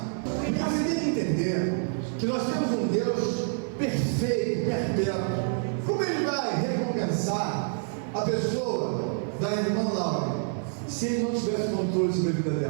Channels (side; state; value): left; silent; 60 dB below the other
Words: Porque você tem que entender que nós temos um Deus perfeito, perpétuo. Como ele vai recompensar a pessoa da irmã Laura se ele não tivesse controle sobre a vida